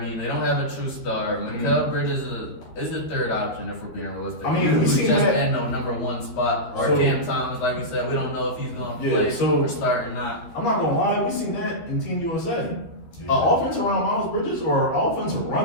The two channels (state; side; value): late; right; 12 ms